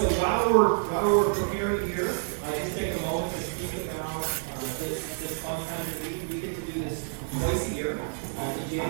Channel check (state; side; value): silent; left; digital silence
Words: while we're preparing here, just take a moment to speak about this fun time of the week. We get to do this twice a year. In